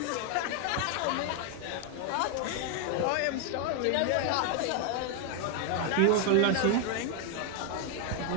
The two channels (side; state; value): both; different; correlation 0.00